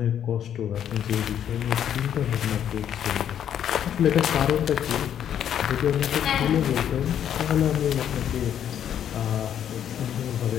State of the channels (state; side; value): quieter; right; 9.7 dB